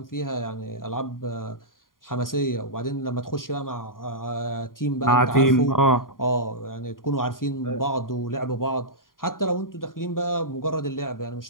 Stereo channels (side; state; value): right; late; 0.90 ms